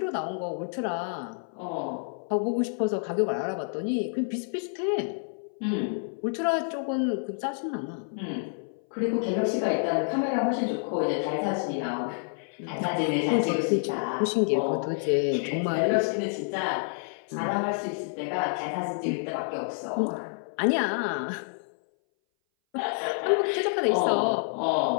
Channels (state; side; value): silent; right; 58 dB below the other